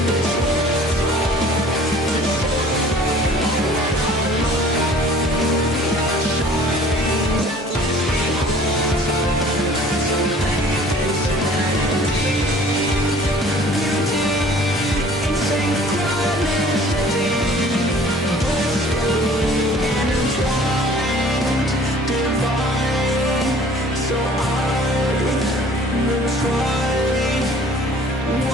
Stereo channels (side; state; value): both; normal; correlation 0.51